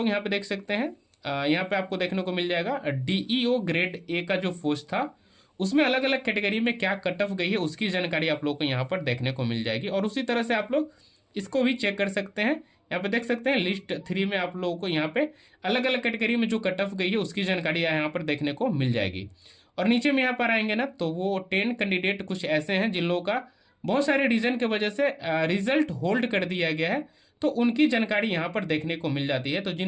यहाँ पे देख सकते हैं, यहाँ पे आपको देखने को मिल जाएगा डीईओ ग्रेड ए का जो पोस्ट था उसमें अलग अलग कैटेगरी में क्या कट ऑफ गई है उसकी जानकारी आप लोग को यहाँ पर देखने को मिल जाएगी। और उसी तरह से आप लोग इसको भी चेक कर सकते हैं। यहाँ पे देख सकते हैं लिस्ट 3 में आप लोगों को यहाँ पे अलग अलग कैटेगरी में जो कट ऑफ गई है उसकी जानकारी यहाँ पर देखने को मिल जाएगी। और नीचे में यहाँ पर आएंगे ना तो वो 10 कैंडिडेट कुछ ऐसे हैं जिन लोगों का बहुत सारे रीजन के वजह से रिजल्ट होल्ड कर दिया गया है, तो उनकी जानकारी यहाँ पर देखने को मिल जाती है। तो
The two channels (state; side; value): identical; both; correlation 1.00